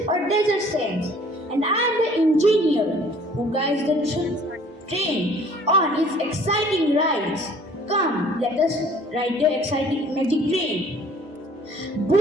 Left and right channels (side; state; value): both; normal; correlation 0.54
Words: or desert sands. And I am the engineer who guides the train on its exciting rides. Come, let us ride the exciting magic train.